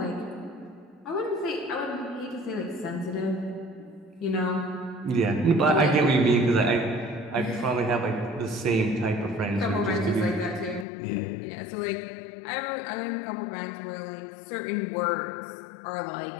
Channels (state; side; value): drops out; right; at 10.9 s